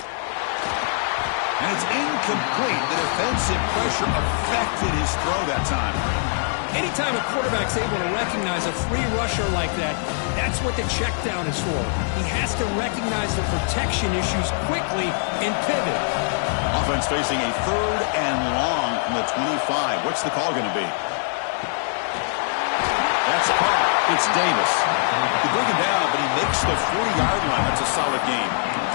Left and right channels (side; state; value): right; silent; digital silence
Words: it's incomplete. The defensive pressure affected his throw that time. Anytime a quarterback's able to recognize a free rusher like that, that's what the check down is for. He has to recognize the protection issues quickly and pivot. Offense facing a 3rd and long from the 25. What's the call going to be? That's caught. It's Davis. They bring him down, but he makes the 40-yard line. That's a solid game.